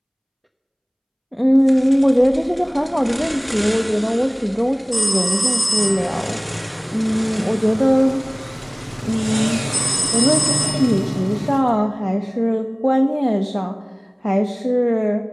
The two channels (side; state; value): both; identical; correlation 1.00